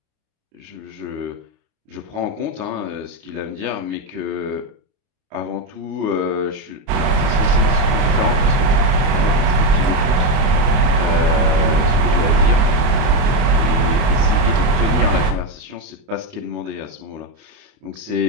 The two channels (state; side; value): late; left; 29 ms